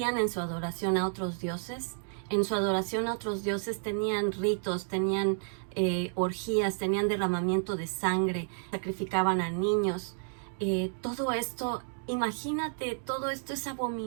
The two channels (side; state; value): left; silent; digital silence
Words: en su adoración a otros dioses? En su adoración a otros dioses tenían ritos, tenían orgías, tenían derramamiento de sangre, sacrificaban a niños. Todo esto, imagínate, todo esto es